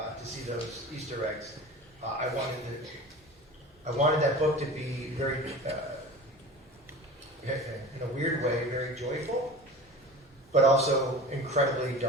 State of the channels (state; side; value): normal; both; correlation 0.36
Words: see those Easter eggs. I wanted that book to be very, in a weird way, very joyful, but also incredibly